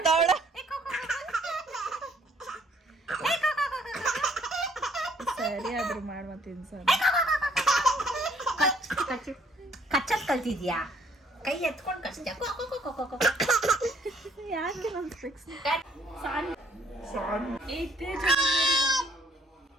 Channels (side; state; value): both; normal; correlation 0.62